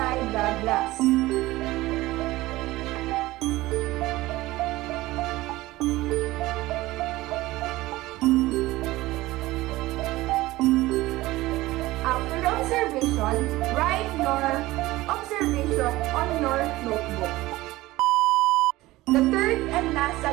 the glass. After the observation, write your observation on your notebook. The third and last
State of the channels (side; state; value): left; quieter; 18.3 dB